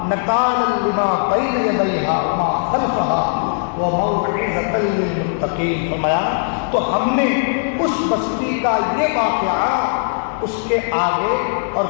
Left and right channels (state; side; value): silent; right; digital silence